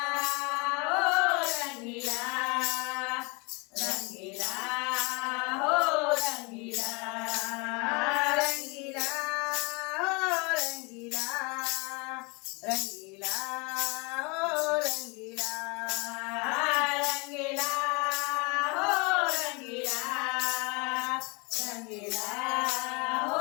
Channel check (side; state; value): right; quieter; 29.8 dB